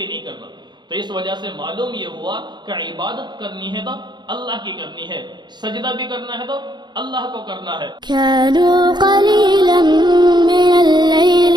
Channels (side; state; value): left; late; 0.21 ms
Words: نہیں کرنا۔ تو اس وجہ سے معلوم یہ ہوا کہ عبادت کرنی ہے تو اللہ کی کرنی ہے، سجدہ بھی کرنا ہے تو اللہ کو کرنا ہے۔ كانوا قليلا من الليل